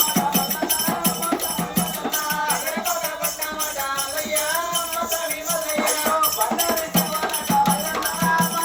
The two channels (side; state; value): both; identical; correlation 1.00